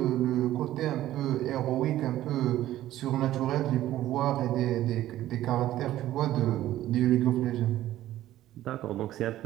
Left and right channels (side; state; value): left; quieter; 14.0 dB